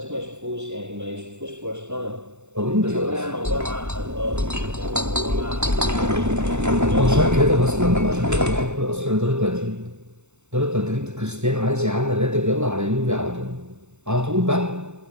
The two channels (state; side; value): late; left; 0.83 ms